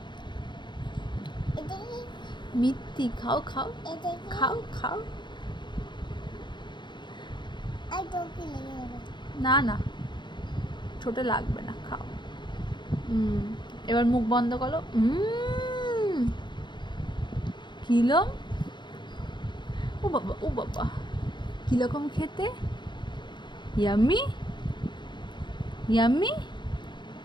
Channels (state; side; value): late; right; 0.22 ms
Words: মিত্তি, খাও খাও খাও খাও। না না, ছোট লাগবে না, খাও। এবার মুখ বন্ধ করো। কিরম? ও বাবা ও বাবা, কিরকম খেতে? ইয়াম্মি ইয়াম্মি,